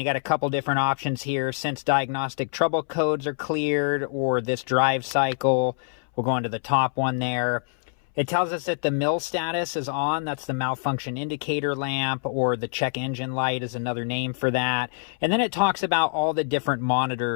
got a couple different options here. Since diagnostic trouble codes are cleared, or this drive cycle, we'll go into the top one there. It tells us that the MIL status is on. That's the malfunction indicator lamp, or the check engine light is another name for that. And then it talks about all the different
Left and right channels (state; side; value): silent; right; 62 dB below the other